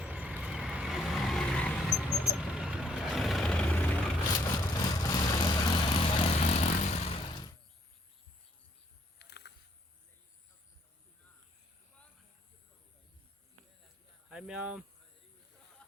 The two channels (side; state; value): both; normal; correlation 0.69